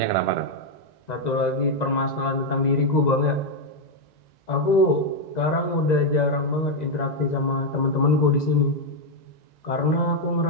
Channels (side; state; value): right; late; 1.9 ms